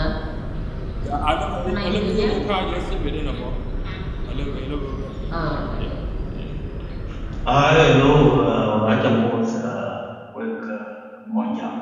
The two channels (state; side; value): identical; both; correlation 1.00